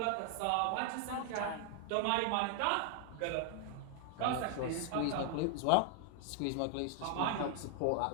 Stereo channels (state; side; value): different; both; correlation 0.00